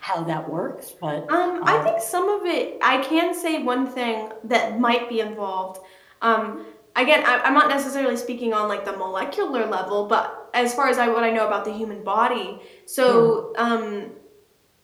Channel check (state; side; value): identical; both; correlation 1.00